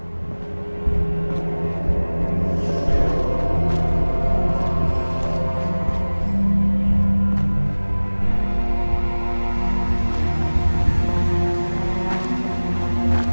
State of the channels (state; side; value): inverted; both; correlation -1.00